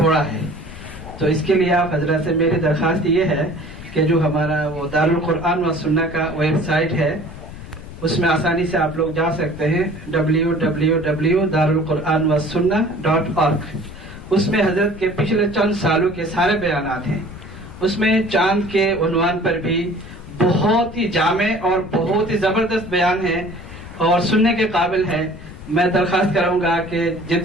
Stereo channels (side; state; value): left; noise; rumble, 14 dB below the sound